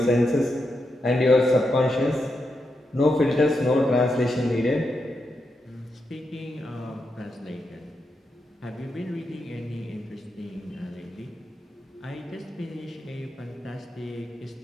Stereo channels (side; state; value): both; normal; correlation 0.84